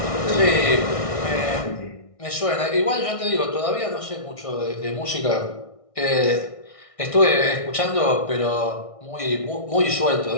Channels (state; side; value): late; right; 1.6 ms